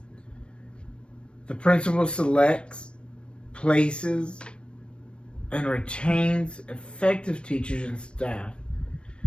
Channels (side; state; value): right; late; 0.057 ms